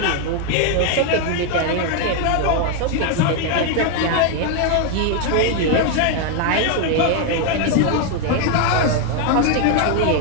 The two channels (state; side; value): different; both; correlation 0.01